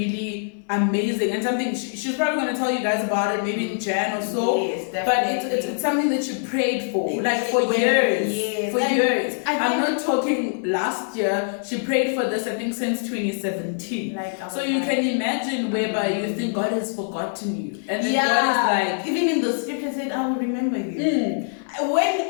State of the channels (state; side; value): silent; right; digital silence